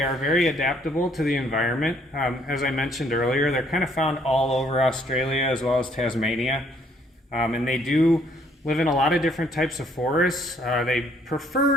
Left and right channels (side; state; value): both; normal; correlation 0.65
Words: are very adaptable to the environment. As I mentioned earlier, they're kind of found all over Australia as well as Tasmania, and they do live in a lot of different types of forests. They